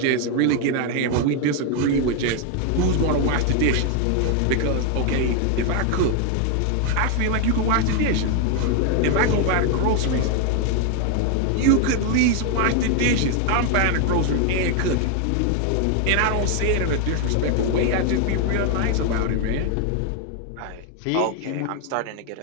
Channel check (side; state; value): both; different; correlation 0.01